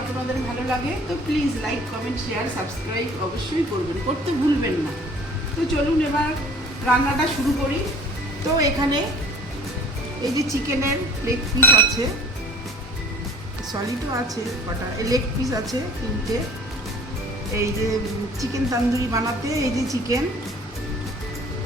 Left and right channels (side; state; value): both; normal; correlation 0.48